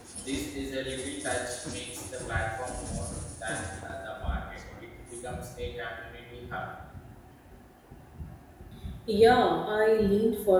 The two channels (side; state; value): both; identical; correlation 1.00